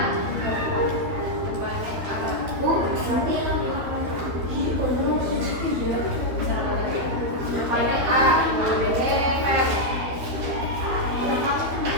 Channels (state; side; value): late; left; 12 ms